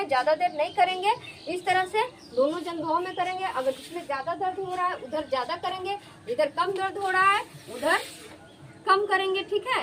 ज़्यादा देर नहीं करेंगे। इस तरह से दोनों जंघों में करेंगे। अगर जिसमें ज़्यादा दर्द हो रहा है उधर ज़्यादा करेंगे, इधर कम दर्द हो रहा है उधर कम करेंगे। ठीक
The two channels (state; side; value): identical; both; correlation 1.00